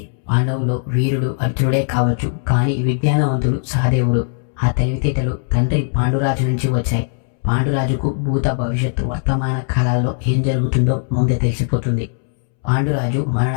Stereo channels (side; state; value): right; silent; 67 dB below the other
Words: పాండవులు వీరుడు అర్జునుడే కావచ్చు, కానీ విజ్ఞానవంతుడు సహదేవుడు. ఆ తెలివితేటలు తండ్రి పాండురాజు నుంచి వచ్చాయి. పాండురాజుకు భూత భవిష్యత్తు వర్తమాన కాలాల్లో ఏం జరుగుతుందో ముందే తెలిసిపోతుంది. పాండురాజు